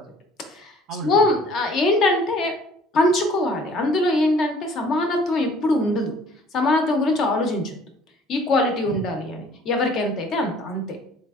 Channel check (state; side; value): normal; both; correlation 0.54